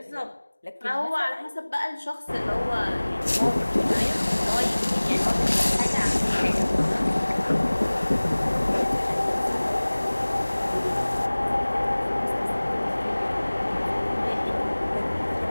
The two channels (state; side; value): inverted; both; correlation -1.00